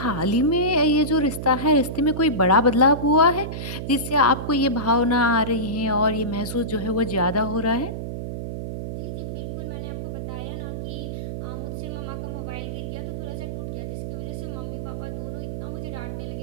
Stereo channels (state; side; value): noise; right; hum, 5 dB below the sound